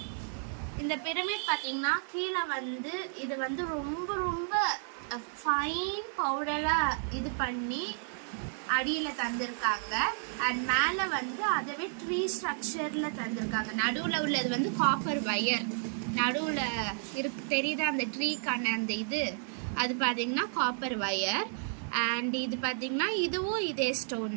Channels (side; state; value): left; silent; 56 dB below the other